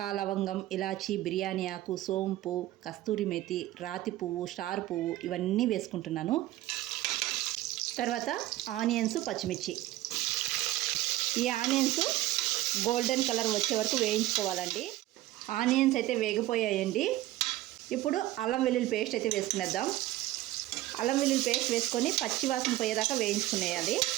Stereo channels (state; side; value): quieter; left; 15.9 dB